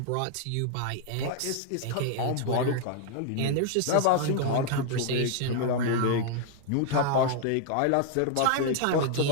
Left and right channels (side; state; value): both; different; correlation -0.01